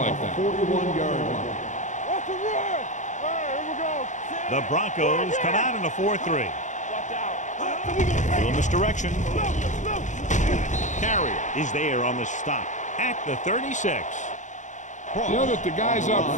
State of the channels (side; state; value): right; late; 0.35 ms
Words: that. 41-yard line. What's the run? All right, here we go. The Broncos come out in a 4-3. Little misdirection. Carrier is there on the stop at the 36. You know that the guys up